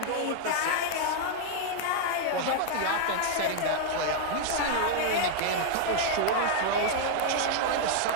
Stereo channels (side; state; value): both; different; correlation 0.00